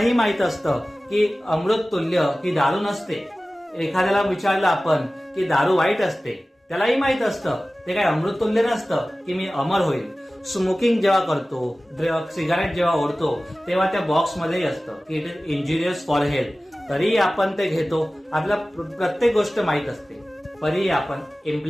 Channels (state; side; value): normal; both; correlation 0.97